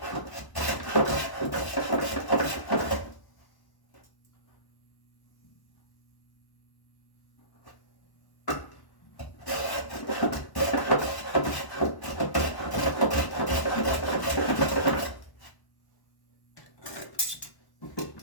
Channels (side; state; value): right; late; 1.1 ms